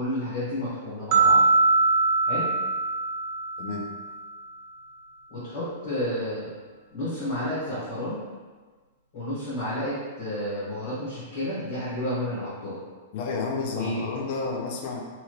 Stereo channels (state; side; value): inverted; both; correlation -0.49